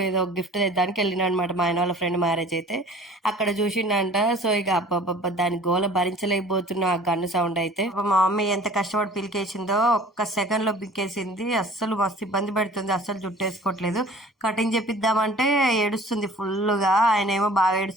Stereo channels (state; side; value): normal; both; correlation 0.47